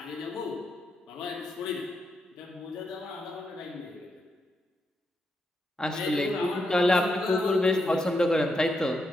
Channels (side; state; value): both; normal; correlation 0.82